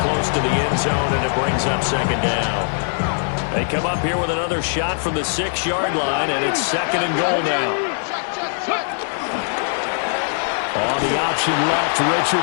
to the end zone, and it brings up 2nd down. They come up here with another shot from the 6-yard line, and it's 2nd and goal now. On the option left,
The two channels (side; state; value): right; silent; 55 dB below the other